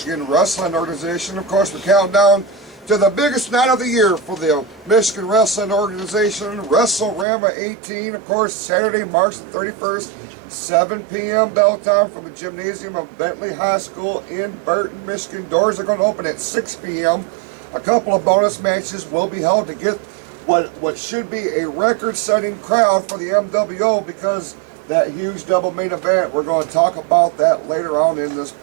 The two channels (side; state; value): left; drops out; at 7.2 s